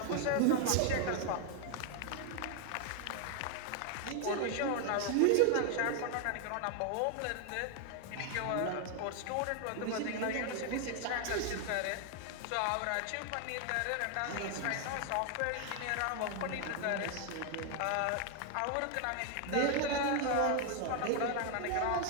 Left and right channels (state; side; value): different; both; correlation 0.00